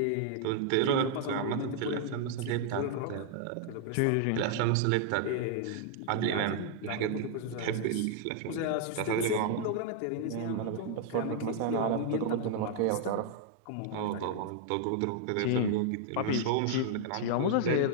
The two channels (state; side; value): different; both; correlation -0.01